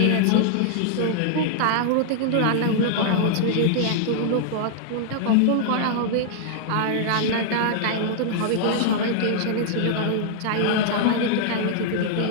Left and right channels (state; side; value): different; both; correlation -0.01